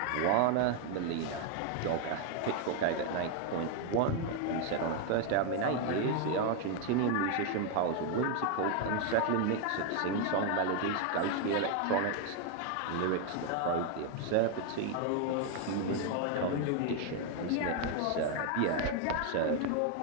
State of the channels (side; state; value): both; different; correlation 0.01